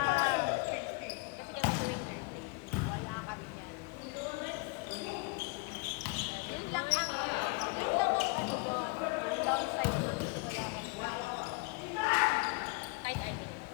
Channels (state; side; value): quieter; right; 28.2 dB